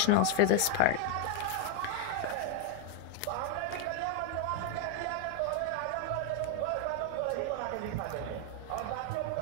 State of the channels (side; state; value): both; different; correlation 0.01